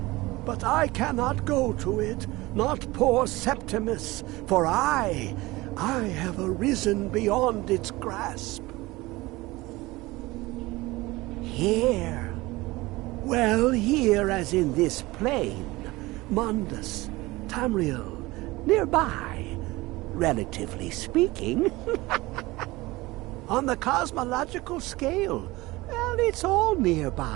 But I cannot go to it, not poor Septimus, for I have arisen beyond its grasp. Here. Well, here as in this plain. Mundus, Tamriel, nearby, relatively speaking. On the cosmological scale, well, it's all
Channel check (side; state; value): left; quieter; 20.6 dB